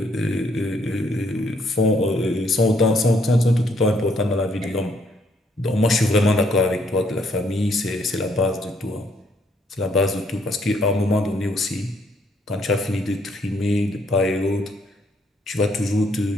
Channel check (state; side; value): normal; both; correlation 0.69